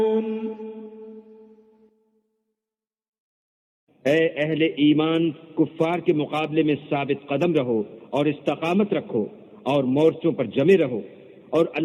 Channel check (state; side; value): identical; both; correlation 1.00